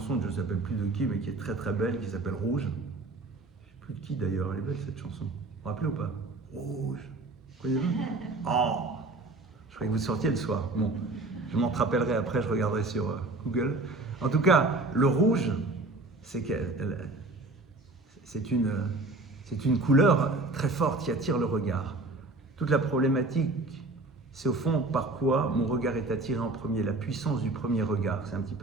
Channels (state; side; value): quieter; left; 3.1 dB